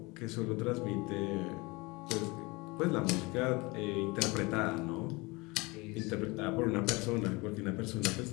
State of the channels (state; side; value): quieter; right; 25.1 dB